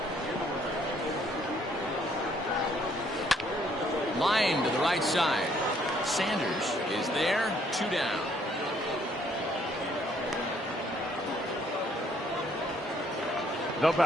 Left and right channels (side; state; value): both; normal; correlation 0.66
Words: Line to the right side. Sanders is there. 2 down. The